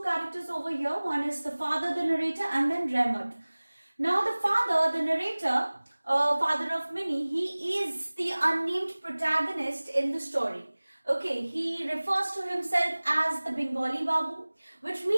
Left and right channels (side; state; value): both; inverted; correlation -1.00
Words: characters over here. One is the father, the narrator, and then Rahmat. Now the father, the narrator, father of Minnie, he is the unnamed protagonist in the story. Okay, he refers to himself as the Bengali Babu, which